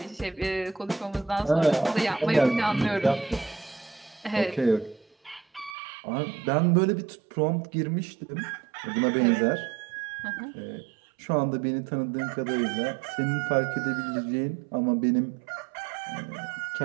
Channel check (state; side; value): drops out; left; at 5.8 s